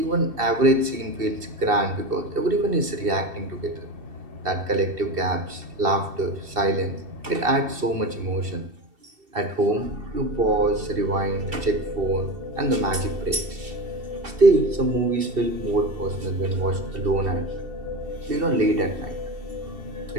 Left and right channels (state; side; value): late; left; 2.7 ms